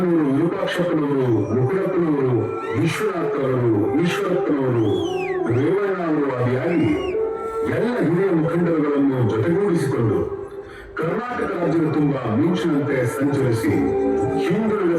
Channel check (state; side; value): identical; both; correlation 1.00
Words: ವಿರೂಪಾಕ್ಷಪ್ಪನವರು, ಮುಕುಳಪ್ಪನವರು, ವಿಶ್ವನಾಥ್ ಅವರು, ಈಶ್ವರಪ್ಪನವರು, ರೇವಣ್ಣ ಅವರು ಆದಿಯಾಗಿ ಎಲ್ಲ ಹಿರಿಯ ಮುಖಂಡರುಗಳನ್ನು ಜೊತೆಗೂಡಿಸಿಕೊಂಡು ಕರ್ನಾಟಕ ರಾಜ್ಯದ ತುಂಬಾ ಮಿಂಚಿನಂತೆ ಸಂಚರಿಸಿ ಹಿಂದುಳಿದ